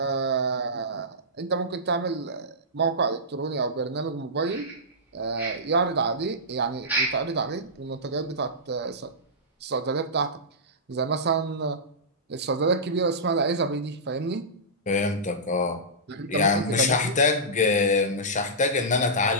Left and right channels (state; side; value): normal; both; correlation -0.16